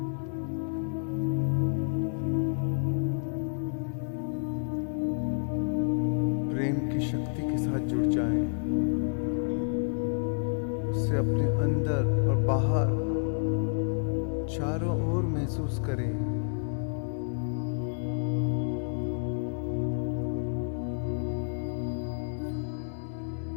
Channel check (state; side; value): silent; right; 58 dB below the other